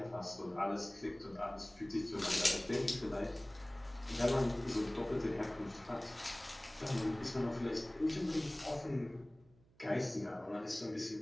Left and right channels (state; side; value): noise; right; hum, 29 dB below the sound